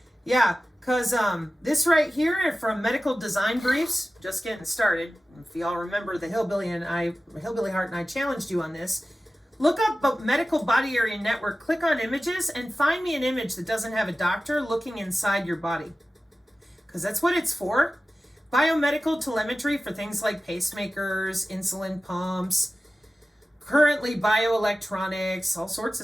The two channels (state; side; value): normal; both; correlation 0.95